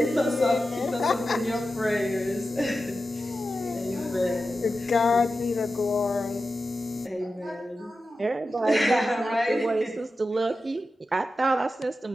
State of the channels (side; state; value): both; normal; correlation 0.92